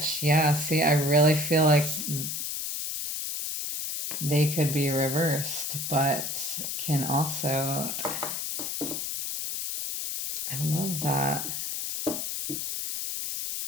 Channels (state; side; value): noise; left; hiss, 3 dB below the sound